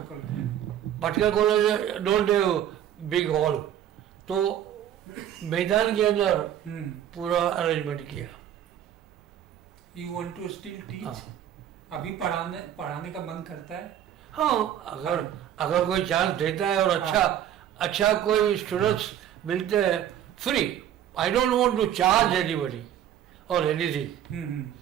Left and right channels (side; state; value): left; quieter; 10.6 dB